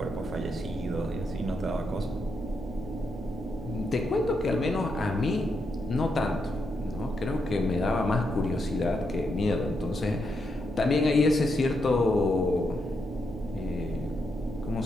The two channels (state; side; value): normal; both; correlation 0.82